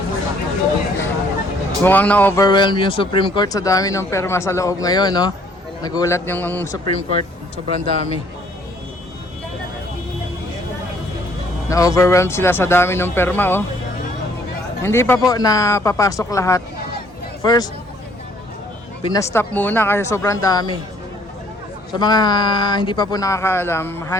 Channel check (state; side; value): normal; both; correlation 0.61